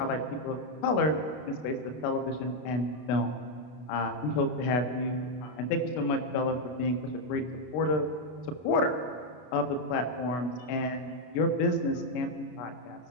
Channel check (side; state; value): right; late; 32 ms